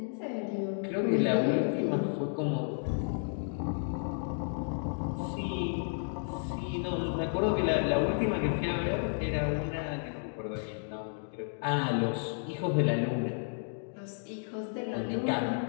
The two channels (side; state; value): right; silent; digital silence